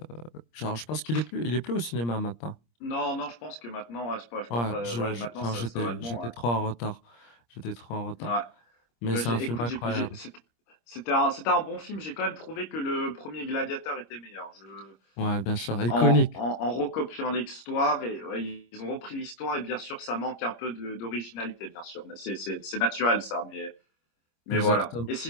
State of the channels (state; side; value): late; right; 26 ms